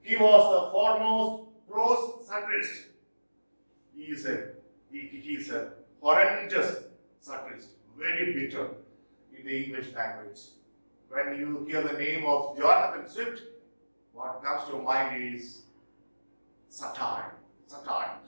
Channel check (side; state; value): both; inverted; correlation -1.00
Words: He was the foremost prose satirist. He is a horrendous satirist, very bitter in the English language. When you hear the name of Jonathan Swift, what comes to mind is satire. Satire.